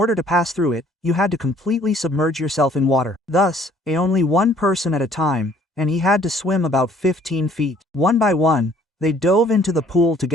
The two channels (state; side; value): normal; both; correlation 0.58